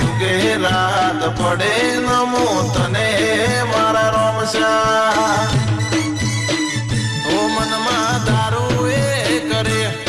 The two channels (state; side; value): identical; both; correlation 1.00